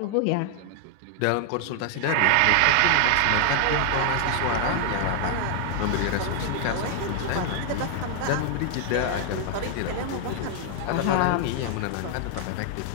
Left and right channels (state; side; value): different; both; correlation 0.00